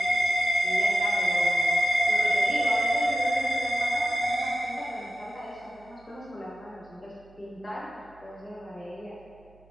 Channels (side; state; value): right; noise; hum, 28 dB below the sound